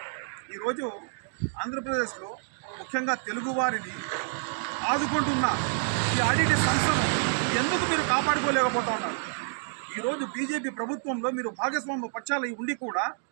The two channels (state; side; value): silent; left; digital silence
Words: ఈరోజు ఆంధ్రప్రదేశ్లో ముఖ్యంగా తెలుగువారిని ఆదుకుంటున్న ఈ ఆడిటి సంస్థను ఎందుకు మీరు కాపాడుకోలేకపోతా ఉన్నారు? ఈరోజు బీజేపీ ప్రభుత్వంలో మీరు భాగస్వామ్య పక్షాలు ఉండి కూడా